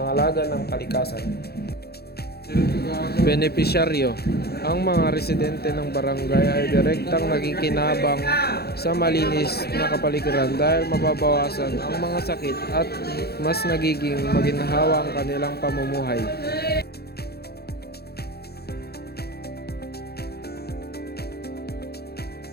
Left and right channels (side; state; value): right; late; 0.46 ms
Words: ng kalikasan. Benepisyaryo. Ang mga residente ng barangay ay direktang nakikinabang sa malinis na kapaligiran dahil mababawasan ang mga sakit at mas nagiging maginhawa ang kanilang pamumuhay.